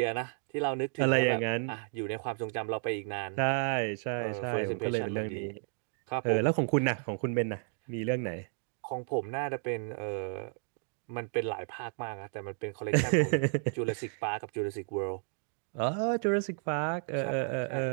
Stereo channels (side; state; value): left; silent; 56 dB below the other